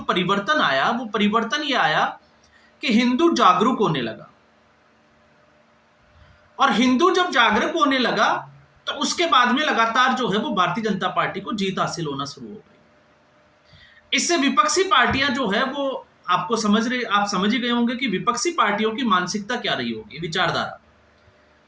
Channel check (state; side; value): identical; both; correlation 1.00